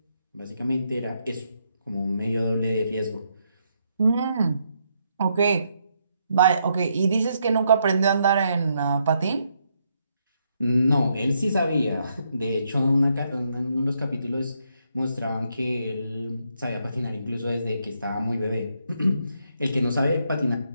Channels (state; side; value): inverted; both; correlation -0.77